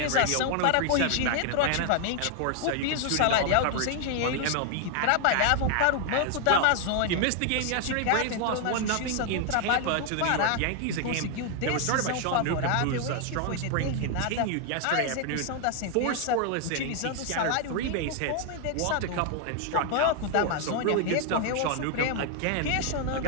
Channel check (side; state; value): both; different; correlation 0.00